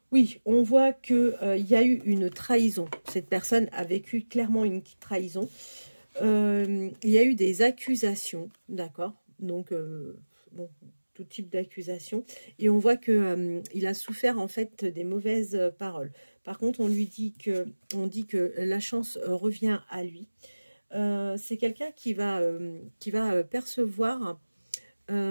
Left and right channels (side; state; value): both; inverted; correlation -1.00